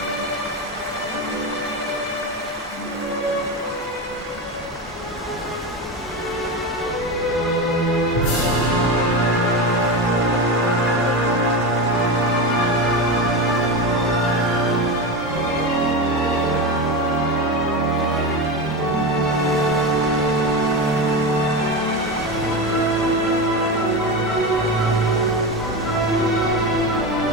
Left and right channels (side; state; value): both; normal; correlation 0.19